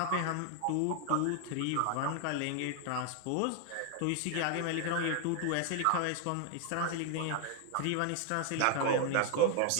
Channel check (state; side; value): different; both; correlation 0.00